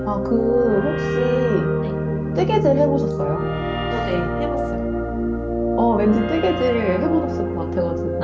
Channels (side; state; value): both; identical; correlation 1.00